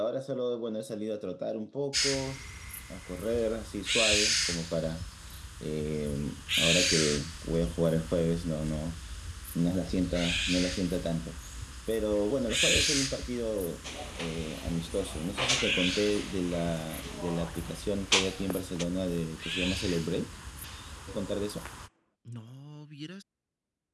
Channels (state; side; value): identical; both; correlation 1.00